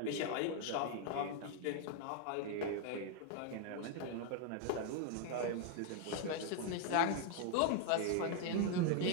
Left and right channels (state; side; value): different; both; correlation 0.00